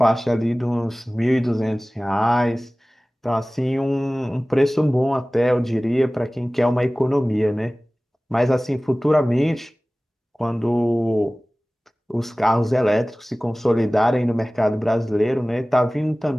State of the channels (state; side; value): normal; both; correlation 0.98